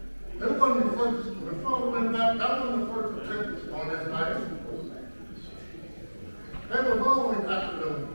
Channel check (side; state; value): both; inverted; correlation -1.00